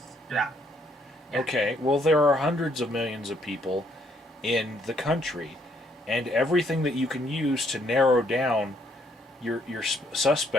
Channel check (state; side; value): normal; both; correlation 0.69